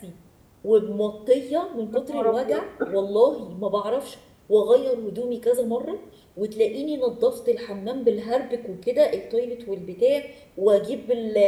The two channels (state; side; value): identical; both; correlation 1.00